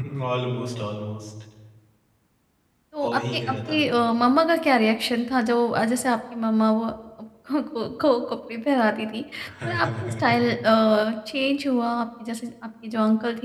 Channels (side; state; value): both; identical; correlation 1.00